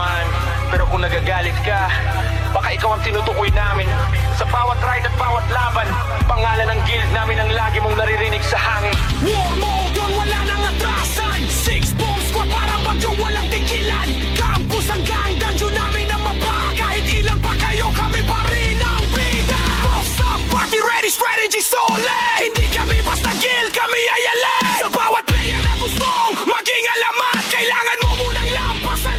Pero kung nagagalit ka, baka ikaw ang tinutukoy namin. Sa bawat ride at bawat laban, pangalan ng guild namin ang lagi mong naririnig sa hangin. War mode yun, wala nang atrasan. 6-bomb squad parang bagyo walang tigilan. Campus hanggang dungeon namin ang mapa. Kahit ilan pa kayo, kami pa rin ang bida. Boss up, party ready, strategy solid. Hindi kami basta guild, kami ay alay. Sa bawat player na gustong maging alamat, kailangan mo munang lampasan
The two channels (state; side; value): identical; both; correlation 1.00